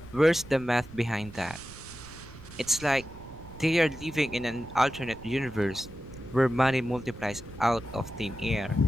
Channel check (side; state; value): right; noise; rumble, 17 dB below the sound